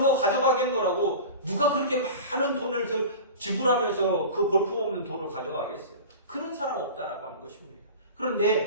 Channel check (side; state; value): both; inverted; correlation -0.34